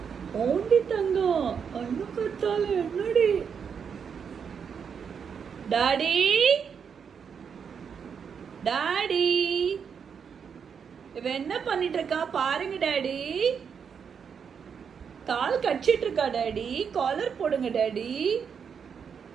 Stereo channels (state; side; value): quieter; left; 6.8 dB